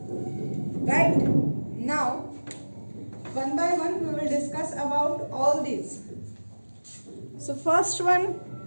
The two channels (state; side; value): inverted; both; correlation -1.00